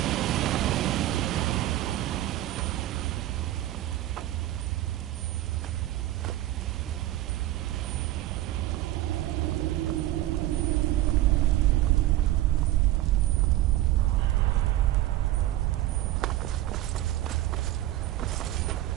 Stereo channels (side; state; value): left; quieter; 15.0 dB